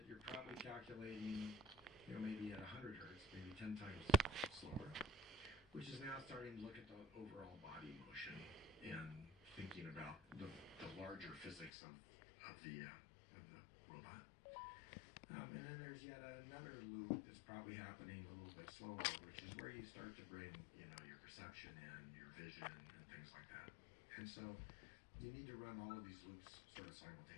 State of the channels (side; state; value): right; drops out; at 11.7 s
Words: you're probably calculating, you know, maybe at 100 hertz, maybe 10 times slower, which is now starting to look at the overall body motion and thinking about the larger physics of the robot. And then there's yet another loop that's probably happening a little bit slower, which is where you start to bring, you know, your perception in, your vision, and things like that. And so you need to run all of these loops sort of